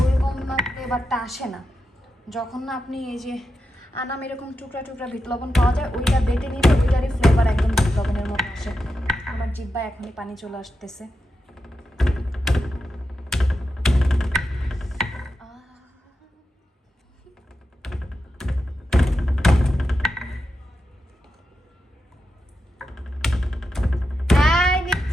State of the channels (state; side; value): normal; both; correlation 0.89